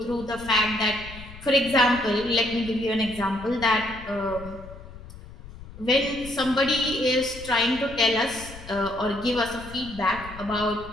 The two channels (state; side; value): noise; left; rumble, 16 dB below the sound